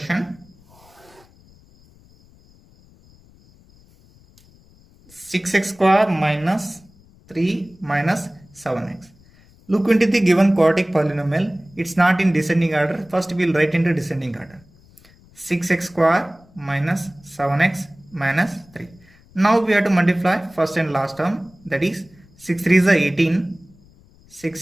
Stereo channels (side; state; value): left; noise; rumble, 28 dB below the sound